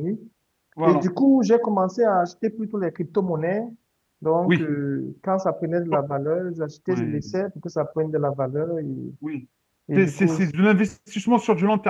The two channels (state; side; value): identical; both; correlation 1.00